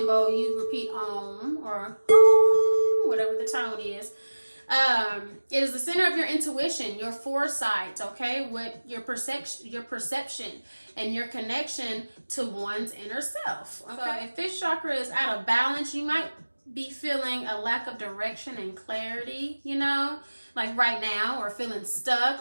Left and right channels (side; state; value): both; inverted; correlation -1.00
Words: bowl, you repeat Om or Om, whatever the tone is. It is the center of your intuition, your foresight, okay, with your perception and your connection to one's inner self. Okay, so if this chakra is out of balance, you might be feeling a lack of direction and clarity, you know, like right now, or feeling